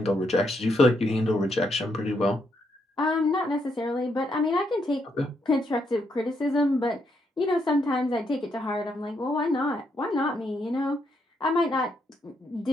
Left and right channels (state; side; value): normal; both; correlation 0.77